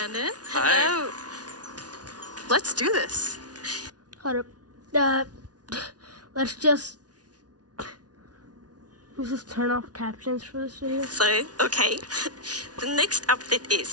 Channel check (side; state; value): left; late; 0.69 ms